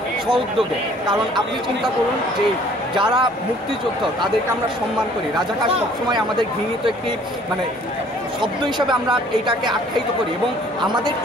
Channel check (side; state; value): both; normal; correlation 0.56